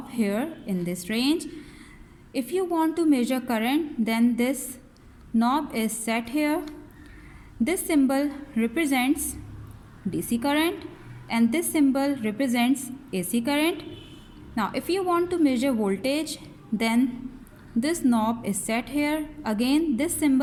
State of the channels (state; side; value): identical; both; correlation 1.00